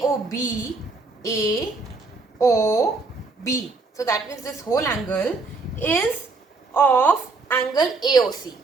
AOB. So that means this whole angle is of angle AOC.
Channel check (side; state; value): left; quieter; 3.8 dB